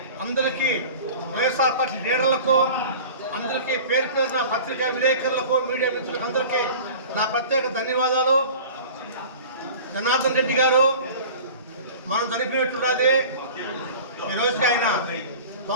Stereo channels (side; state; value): both; inverted; correlation -0.40